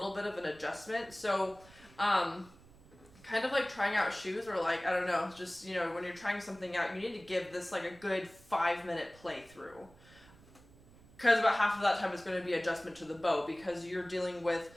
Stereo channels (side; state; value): right; noise; rumble, 24 dB below the sound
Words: bit of an adjustment. So, kind of like trying out shoes, or like, I don't know, just, when you're trying something out, you need to give this like a good 5-minute playthrough. Because about half of that time is going to be adjustment to the bow, because you're dealing with